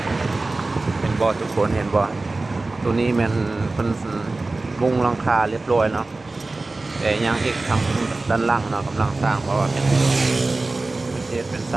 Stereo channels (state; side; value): quieter; left; 3.3 dB